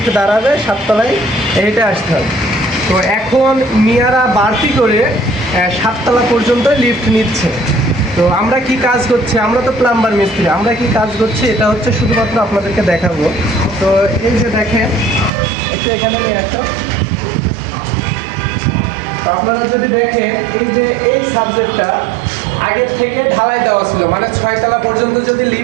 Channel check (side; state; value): left; drops out; at 15.3 s